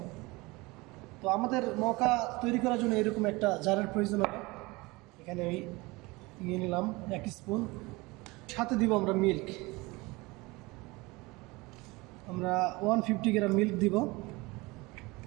তো আমাদের মকা তৈরি করার জন্য এরকম একটা জারের প্রয়োজন হবে। এখানে আমি নিয়ে নিলাম 1 স্পুন। সাথে দিব আমরা মিল্ক। আমরা 150 গ্রাম মিল্ক দিব।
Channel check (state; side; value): quieter; left; 23.4 dB